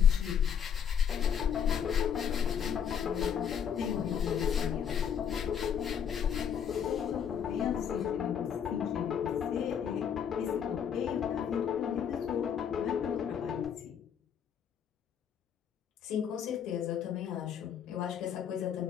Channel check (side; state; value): right; quieter; 8.1 dB